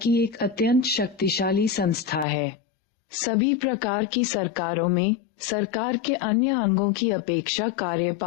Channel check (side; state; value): right; drops out; at 2.2 s